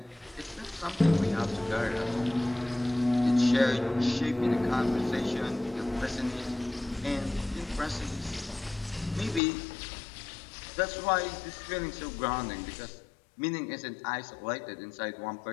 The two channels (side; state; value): right; drops out; at 9.4 s